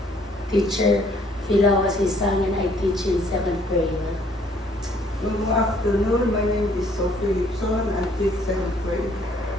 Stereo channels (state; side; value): normal; both; correlation 0.62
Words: Teacher Filawasisang and I teach in 7th grade. Good afternoon. My name is Sophie Lipson. I teach 7th grade.